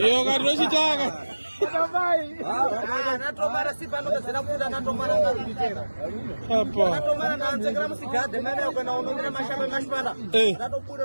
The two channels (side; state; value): both; inverted; correlation -1.00